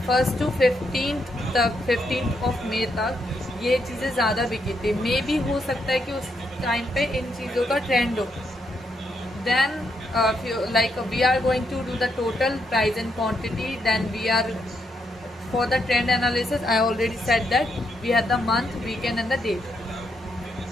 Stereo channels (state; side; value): normal; both; correlation 0.79